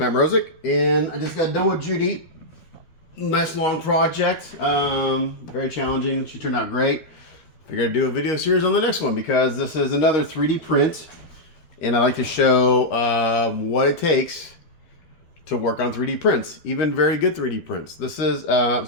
Mrozik, and I just got done with Judy. Nice long project. Very challenging. She turned out great. Figured I'd do a video series on the next one because this is another 3D print, and I like to show what it takes to work on 3D prints, even very good 3D prints. This is so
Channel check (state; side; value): late; right; 13 ms